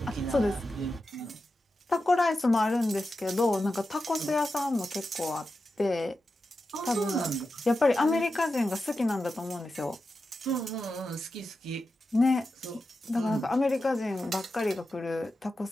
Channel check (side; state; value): both; normal; correlation 0.91